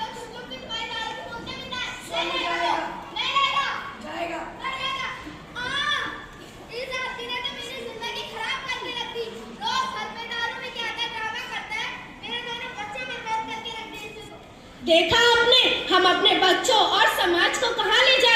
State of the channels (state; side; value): identical; both; correlation 1.00